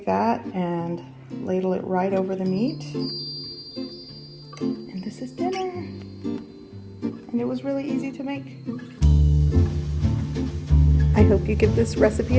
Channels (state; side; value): identical; both; correlation 1.00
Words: that and ladle it right over the meat. And this is dinner. And it was really easy to make. I hope you give this recipe